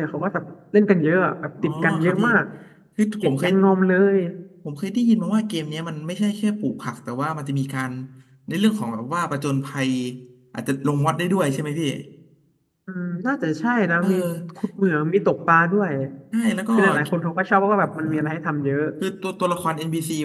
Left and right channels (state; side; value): identical; both; correlation 1.00